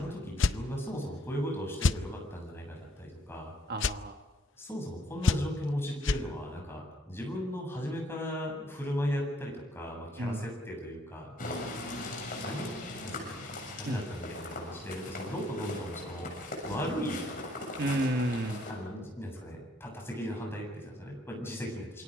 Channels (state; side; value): normal; both; correlation 0.66